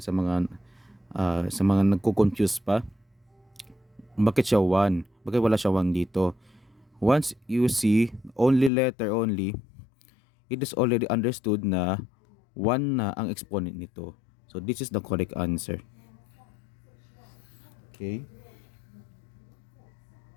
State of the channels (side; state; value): right; drops out; at 8.7 s